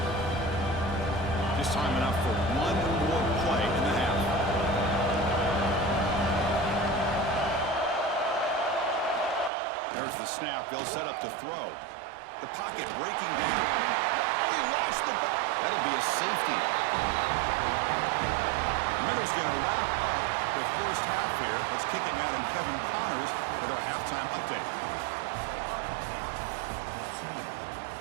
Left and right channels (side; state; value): left; drops out; at 9.5 s